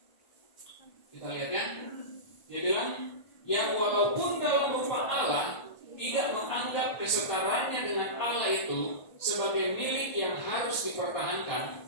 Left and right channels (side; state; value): right; late; 1.4 ms